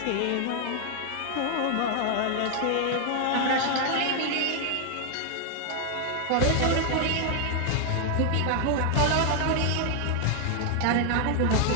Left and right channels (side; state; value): both; different; correlation 0.00